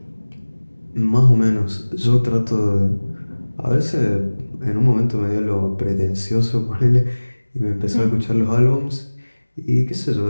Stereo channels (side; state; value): both; inverted; correlation -1.00